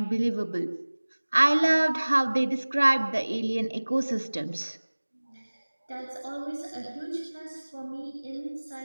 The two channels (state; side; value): inverted; both; correlation -1.00